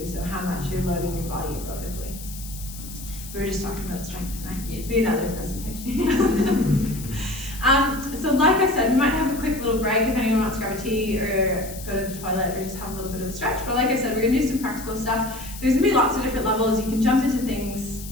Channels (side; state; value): left; noise; hiss, 14 dB below the sound